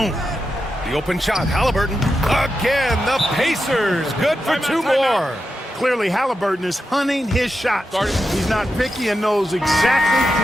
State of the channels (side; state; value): both; normal; correlation 0.89